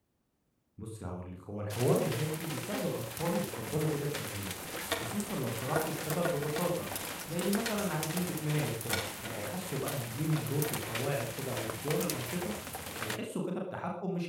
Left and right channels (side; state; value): both; identical; correlation 1.00